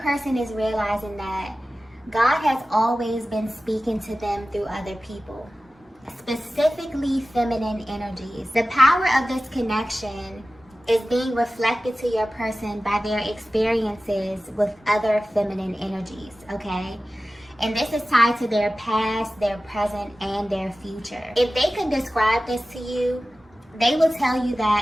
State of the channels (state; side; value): normal; both; correlation 0.96